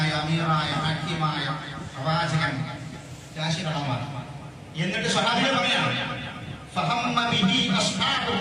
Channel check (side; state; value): both; identical; correlation 1.00